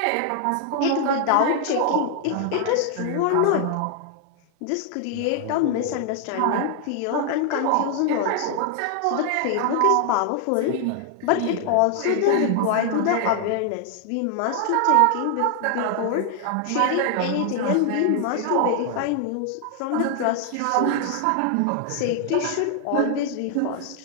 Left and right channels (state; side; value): different; both; correlation 0.00